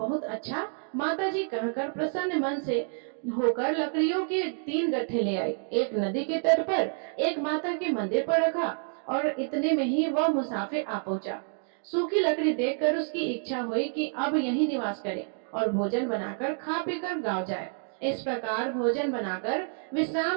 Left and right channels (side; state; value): left; silent; 59 dB below the other